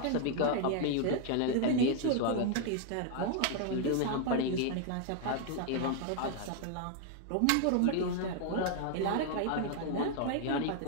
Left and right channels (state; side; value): different; both; correlation 0.00